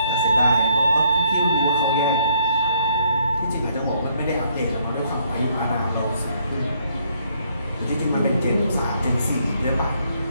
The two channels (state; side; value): inverted; both; correlation -0.70